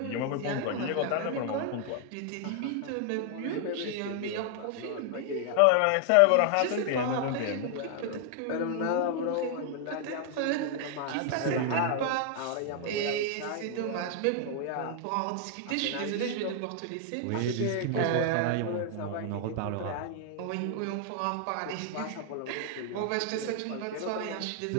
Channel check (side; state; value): both; different; correlation 0.00